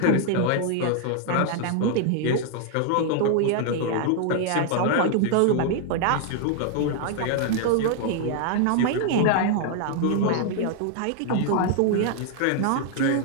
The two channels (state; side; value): different; both; correlation 0.00